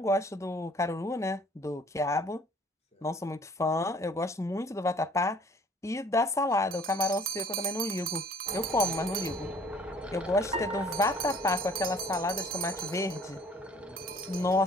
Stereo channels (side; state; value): both; normal; correlation 0.54